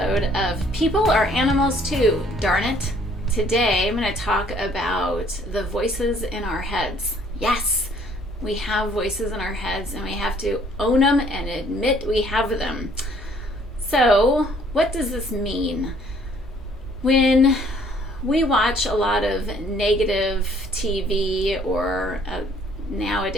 of People Are Animals Too, Darn It. Today I'm going to talk about the voices in our heads. Yes, we have voices in our heads and we have to own them and admit we have them. So, what does this mean? When we watch a lot of negative TV or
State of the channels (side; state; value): both; normal; correlation 0.60